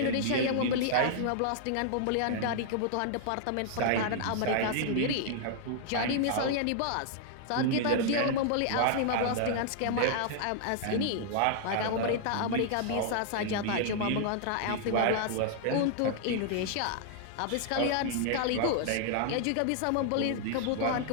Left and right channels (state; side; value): different; both; correlation -0.01